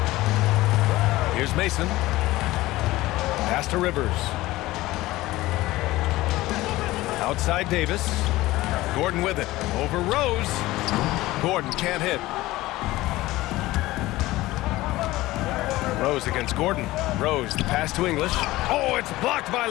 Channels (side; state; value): right; quieter; 17.9 dB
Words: Here's Mason. Pass to Rivers. Outside Davis. Gordon with it. Over Rose. Gordon can't hit. Rose against Gordon. Rose, the pass to English. Oh, it's blocked by